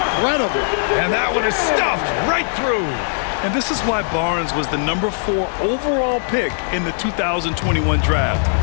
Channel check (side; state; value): right; silent; digital silence